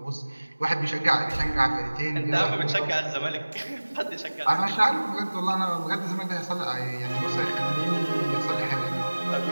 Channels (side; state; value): both; inverted; correlation -1.00